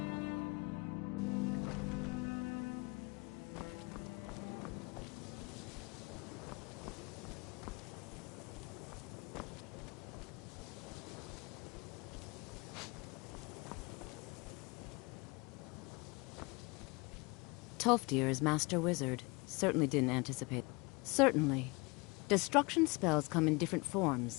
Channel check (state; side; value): quieter; right; 27.3 dB